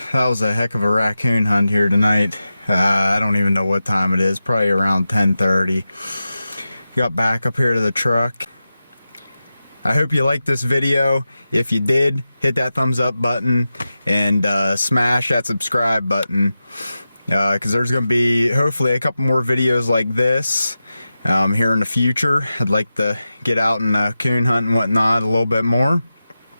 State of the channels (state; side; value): inverted; both; correlation -0.93